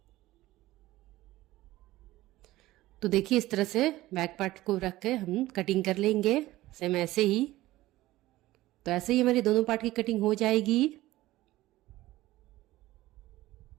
तो देखिए इस तरह से बैक पार्ट को रख के हम कटिंग कर लेंगे सेम ऐसे ही। तो ऐसे ही हमारी दोनों पार्ट की कटिंग हो जाएगी।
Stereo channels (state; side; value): quieter; left; 16.9 dB